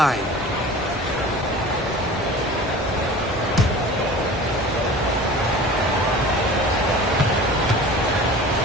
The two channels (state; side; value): normal; both; correlation 0.40